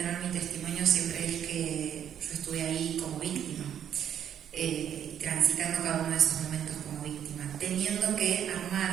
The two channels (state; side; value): quieter; left; 9.4 dB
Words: mi testimonio siempre es que yo estuve ahí como víctima, transitando cada uno de esos momentos como víctima, teniendo que